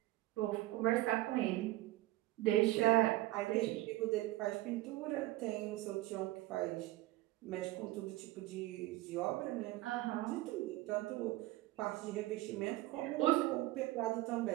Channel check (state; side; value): quieter; left; 17.8 dB